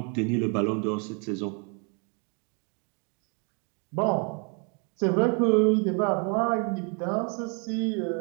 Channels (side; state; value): left; quieter; 36.2 dB